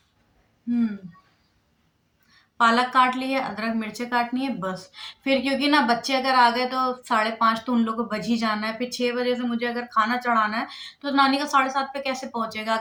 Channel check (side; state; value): both; identical; correlation 1.00